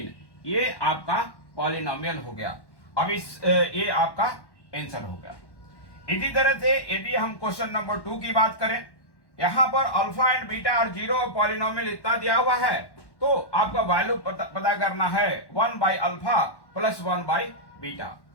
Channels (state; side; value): late; right; 1.1 ms